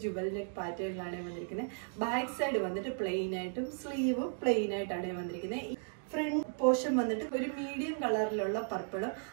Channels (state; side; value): silent; left; 54 dB below the other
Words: ജുവൽ നെക്ക് പാറ്റേണിലാണ് വന്നിരിക്കുന്നത്. ബാക്ക് സൈഡ് വന്നിട്ട് പ്ലെയിൻ ആയിട്ടും സ്ലീവും പ്ലെയിൻ ആയിട്ടാണ് വന്നിരിക്കുന്നത്. ഫ്രണ്ട് പോർഷൻ വന്നിട്ട് ഒരു മീഡിയം കളറിലുള്ള പർപ്പിളും